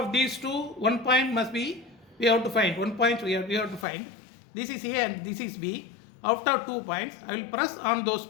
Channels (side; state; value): right; drops out; at 3.9 s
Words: these two, 1 point must be, we have to find 1 point. We have to find. This is A and this is B. Out of 2 points, I will press on those